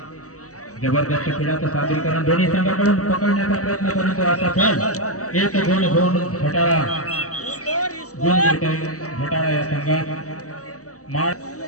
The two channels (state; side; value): late; right; 0.66 ms